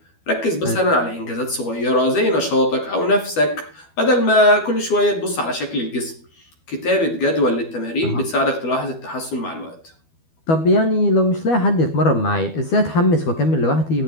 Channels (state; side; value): late; right; 12 ms